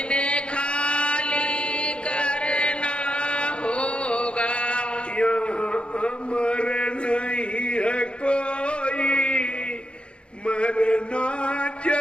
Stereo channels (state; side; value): late; right; 0.057 ms